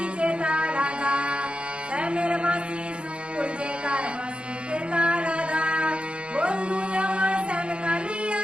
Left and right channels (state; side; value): late; left; 0.057 ms